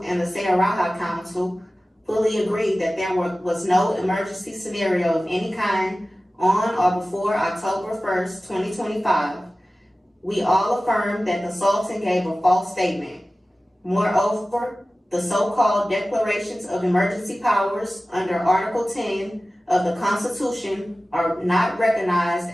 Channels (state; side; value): normal; both; correlation 0.96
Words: and the Sayaraha Council fully agree that there was no emergency scenario of any kind on or before October 1st, 2025. We all affirm that the Sultan gave a false statement. Moreover, the so-called declarations of emergency powers under Article 10 of the Constitution are not